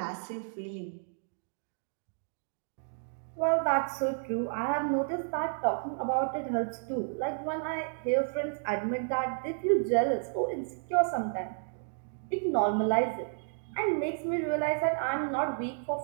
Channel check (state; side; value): silent; left; digital silence